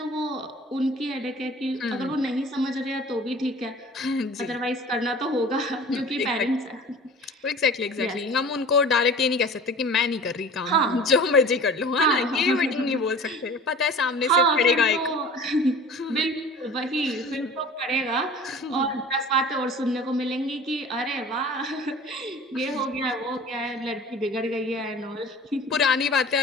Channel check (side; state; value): both; normal; correlation 0.42